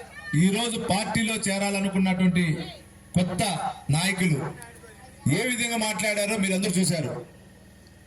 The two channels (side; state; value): both; identical; correlation 1.00